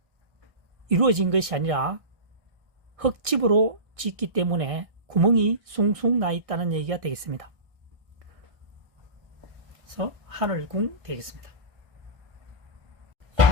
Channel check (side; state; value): left; late; 1.6 ms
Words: 이루어진 것이 아니라 흙집으로 짓기 때문에 구멍이 숭숭 나 있다는 얘기가 되겠습니다. 그래서 하늘궁 되겠습니다.